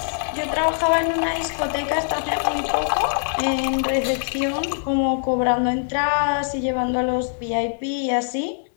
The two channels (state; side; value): silent; right; 64 dB below the other